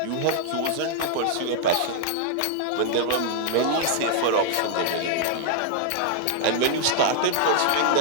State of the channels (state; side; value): different; both; correlation -0.01